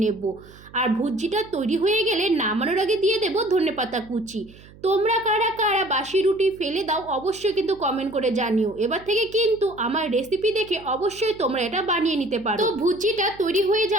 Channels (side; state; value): right; noise; hum, 22 dB below the sound